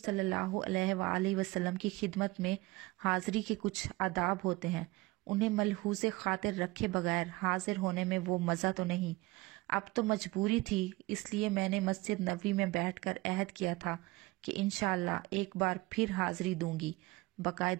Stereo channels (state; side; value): quieter; left; 21.4 dB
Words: اللہ علیہ وآلہ وسلم کی خدمت میں حاضری کے کچھ آداب ہوتے ہیں، انہیں ملحوظ خاطر رکھے بغیر حاضر ہونے میں وہ مزہ تو نہیں۔ اب تو مجبوری تھی، اس لیے میں نے مسجد نبوی میں بیٹھ کر عہد کیا تھا کہ انشاءاللہ ایک بار پھر حاضری دوں گی،